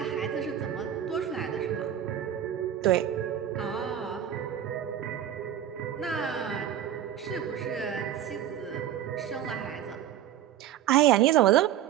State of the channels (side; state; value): left; quieter; 10.7 dB